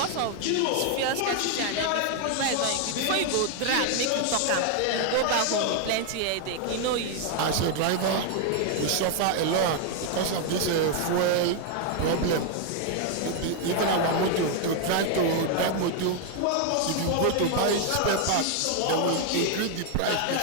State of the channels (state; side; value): different; both; correlation 0.00